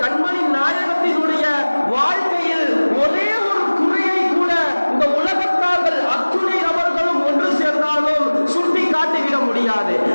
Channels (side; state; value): both; inverted; correlation -1.00